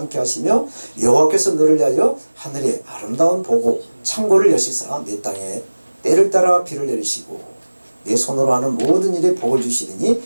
하시며 여호와께서 너를 위하여 하늘의 아름다운 보고 창고를 여시사 내 땅에 때를 따라 비를 내리시고 내 손으로 하는 모든 일에 복을 주시리니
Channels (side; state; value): both; inverted; correlation -1.00